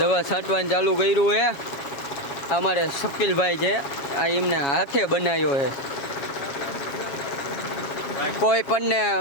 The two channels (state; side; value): late; right; 7.2 ms